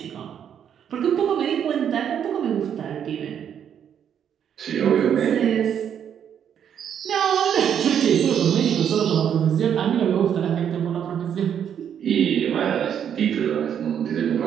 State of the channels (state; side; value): quieter; left; 8.7 dB